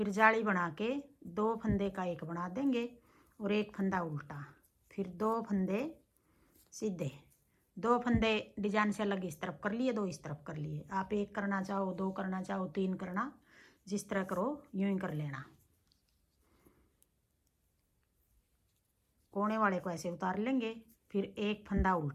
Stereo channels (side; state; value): both; identical; correlation 1.00